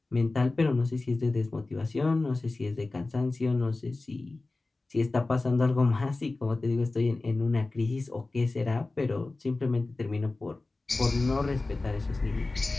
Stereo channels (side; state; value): right; quieter; 3.3 dB